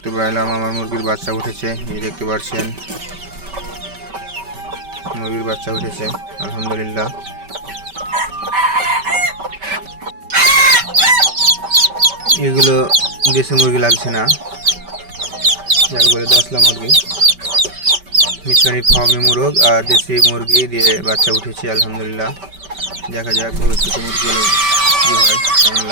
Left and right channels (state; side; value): late; left; 5.2 ms